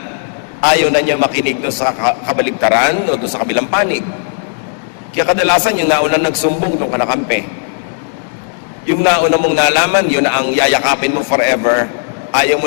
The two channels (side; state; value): right; silent; digital silence